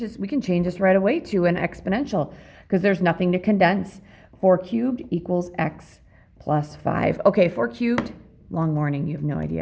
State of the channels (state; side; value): identical; both; correlation 1.00